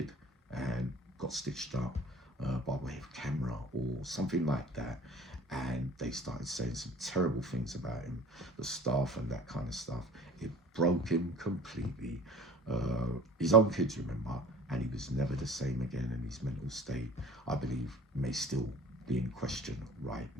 and got stitched up by way of camera or something like that. And they started saying some terrible things about him, the staff and that kind of stuff. It broke him completely. His own kids, remember, and he was never the same again, and his mental state, I believe, may still be in question right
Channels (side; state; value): both; normal; correlation 0.45